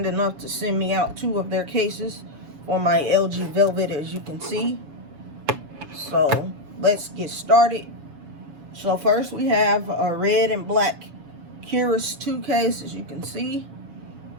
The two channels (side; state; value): left; late; 7.0 ms